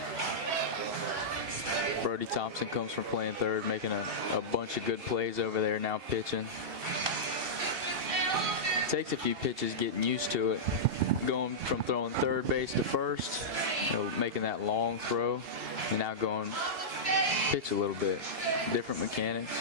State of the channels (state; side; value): late; left; 2.7 ms